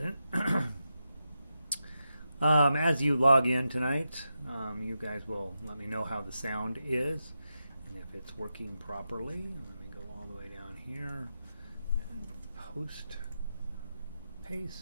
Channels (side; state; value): both; inverted; correlation -0.89